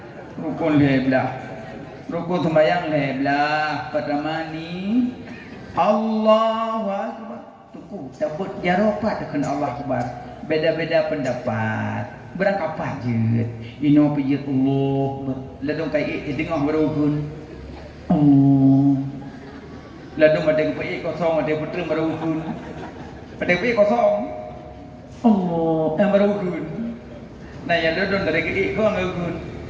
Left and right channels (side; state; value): both; identical; correlation 1.00